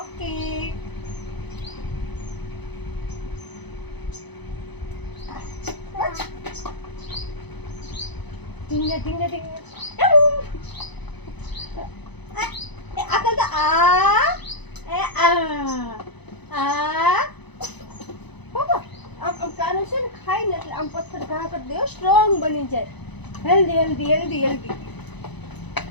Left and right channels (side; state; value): right; late; 0.99 ms